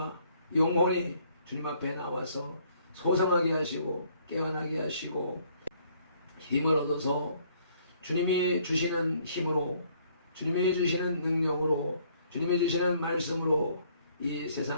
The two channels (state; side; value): inverted; both; correlation -0.64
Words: 영혼이 주님 앞에 나와서 소성하게 하시고 깨어나게 하시고 힘을 얻어서 주님이 주시는 힘으로, 주님이 주시는 능력으로, 주님이 주시는 말씀으로 이